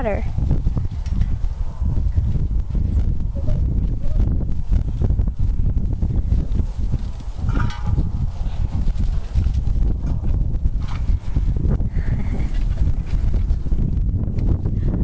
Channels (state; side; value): identical; both; correlation 1.00